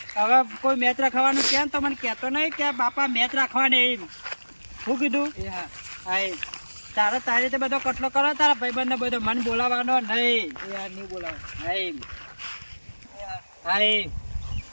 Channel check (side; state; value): both; inverted; correlation -1.00